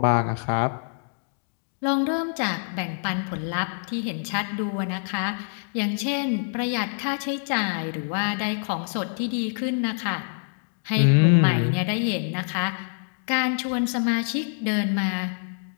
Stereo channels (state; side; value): silent; right; digital silence